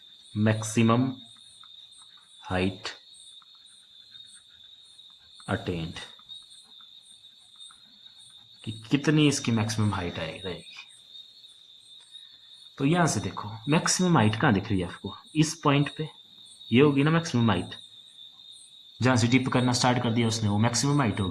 मैक्सिमम हाइट अटेंड, कि कितनी इसकी मैक्सिमम हाइट रहेगी। तो यहाँ से देखो मैक्सिमम हाइट कहाँ दिख रही है आपको, इस पॉइंट पे, ये होगी ना मैक्सिमम हाइट, जहाँ से डिप करना स्टार्ट कर दिया उसने, वो मैक्सिमम हाइट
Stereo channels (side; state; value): both; identical; correlation 1.00